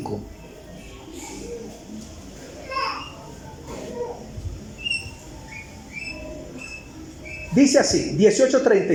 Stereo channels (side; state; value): both; identical; correlation 1.00